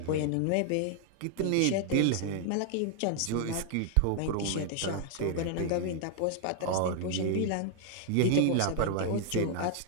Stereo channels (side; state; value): both; different; correlation 0.00